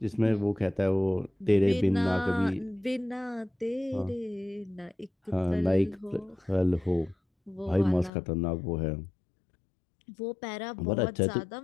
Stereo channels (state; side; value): drops out; right; at 8.1 s